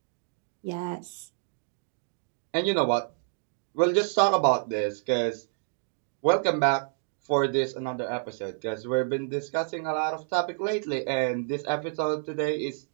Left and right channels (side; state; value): left; silent; digital silence